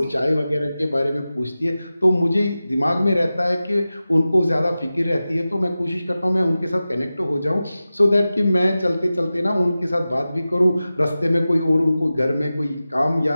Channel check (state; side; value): inverted; both; correlation -0.95